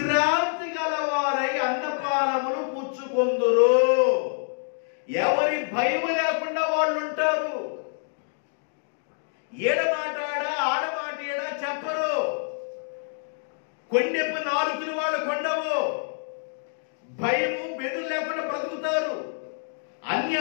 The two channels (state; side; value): silent; right; digital silence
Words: గలవారై అన్నపానములు పుచ్చుకొందురు. ఎవరి భయము లేకుండా వాళ్ళు ఉంటారు. ఏడమాటాడా ఆడమాట ఏడా చెప్పరు. కొండెప్పు నాలుగులు వాళ్ళు కొండవు. భయము బెదురు లేకుండా బ్రతుకుతారు.